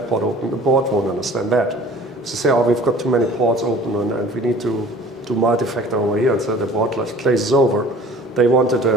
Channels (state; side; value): normal; both; correlation 0.48